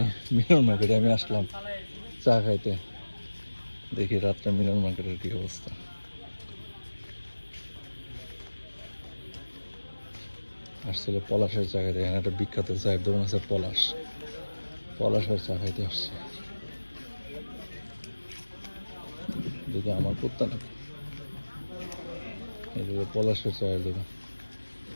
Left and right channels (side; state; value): both; inverted; correlation -1.00